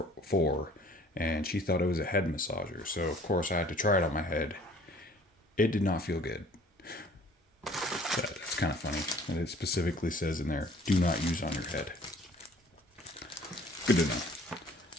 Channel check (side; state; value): both; normal; correlation 0.53